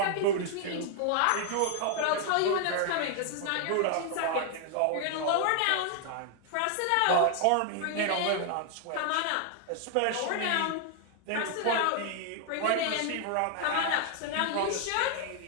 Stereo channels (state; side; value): different; both; correlation 0.00